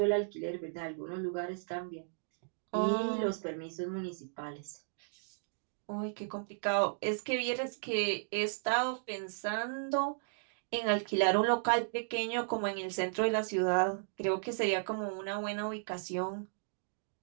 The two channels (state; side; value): silent; left; digital silence